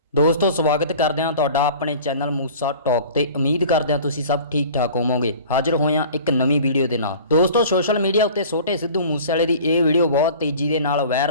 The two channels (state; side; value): inverted; both; correlation -0.43